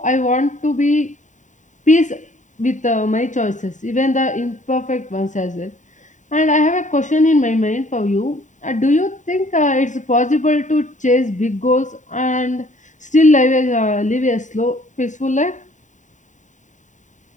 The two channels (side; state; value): right; late; 0.36 ms